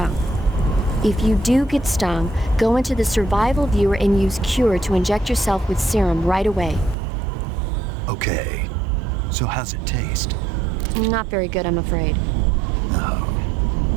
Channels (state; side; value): drops out; left; at 7.0 s